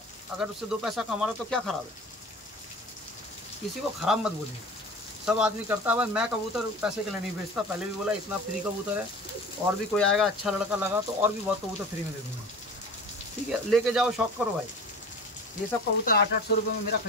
अगर उससे 2 पैसा कमा रहा है तो क्या खराब है? किसी को खराब मत बोलिए, सब आदमी करता है। भाई मैं कबूतर पैसे के लिए नहीं बेचता, पहले भी बोला, इतना फ्री कबूतर है। और भी कोई आएगा अच्छा लड़का लगा तो और भी बहुत कबूतर फ्री में दे दूँगा, ठीक है? लेके जाओ, शौक करो भाई। ये सब कबूतर 800 रुपये में मेरा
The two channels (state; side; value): normal; both; correlation 0.39